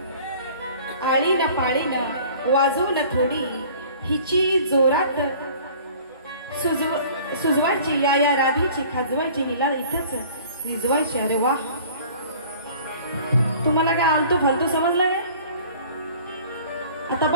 आळी न पाळी न वाजवू न थोडी हिची जोरात सुजवायची, या राधीची खाजवायची, हिला इथंच निजवायची. अरे वा, तुम्हाला काय आलतो फालतू समजलं काय? आता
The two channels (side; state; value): both; inverted; correlation -0.48